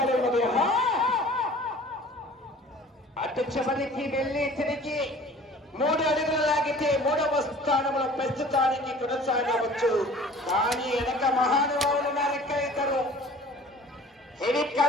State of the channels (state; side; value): normal; both; correlation 0.47